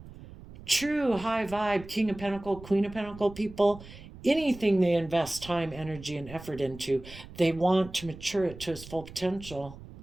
True high vibe, King of Pentacle, Queen of Pentacle people, anything they invest time, energy, and effort into, they want to mature it to its full potential.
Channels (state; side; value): noise; right; rumble, 16 dB below the sound